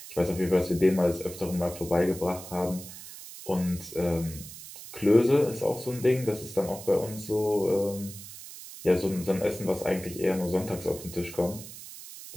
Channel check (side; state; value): right; noise; hiss, 14 dB below the sound